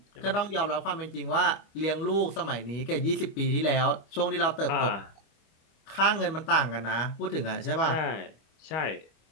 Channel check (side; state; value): right; late; 25 ms